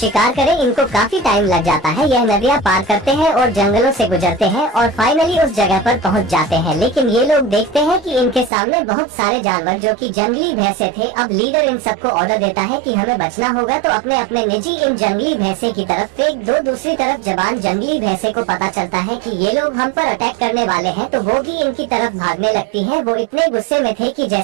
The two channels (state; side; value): drops out; left; at 8.5 s